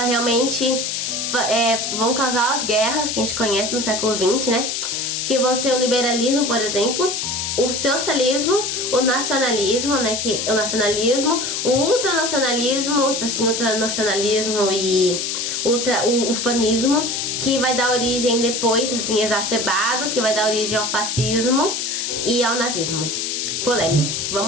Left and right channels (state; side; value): noise; left; hiss, 2 dB below the sound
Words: vão causar as guerras que a gente conhece no século XX, né? Que vão ser o liberalismo, por exemplo, o socialismo, o nacionalismo, né? O ultranacionalismo, tipo assim, ultranacionalismo e o ufanismo, que vai dar origem depois, assim, exacerbado, que vai dar origem ao fascismo e ao nazismo. Polêmico.